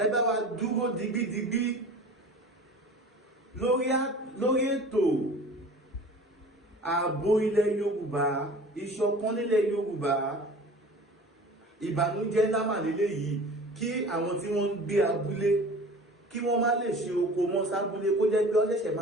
bá wa dúró digbídigbí lórí ètò ààbò ilẹ̀ Yorùbá ìṣọ̀kan nílẹ̀ Yorùbá ìbànújẹ́ lámà lélẹ̀ yìí kí àwọn tí wọ́n ń gbé abúlé kí wọ́n má lè ṣe oko mọ́ sábúlé kó jẹ́ pé ọ̀ṣẹ̀ṣẹ̀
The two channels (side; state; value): both; normal; correlation 0.42